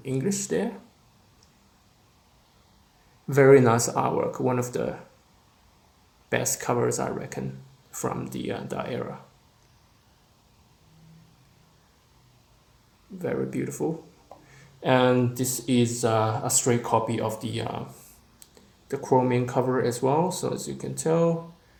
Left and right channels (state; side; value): identical; both; correlation 1.00